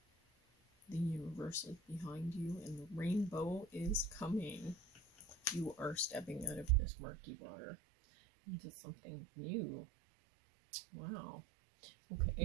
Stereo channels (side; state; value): left; drops out; at 6.8 s